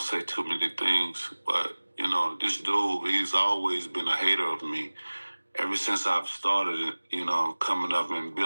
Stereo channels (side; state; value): both; inverted; correlation -1.00